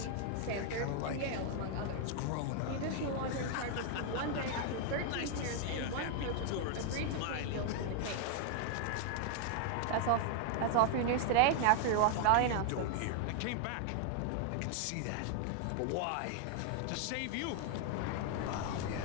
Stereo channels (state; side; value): different; both; correlation 0.00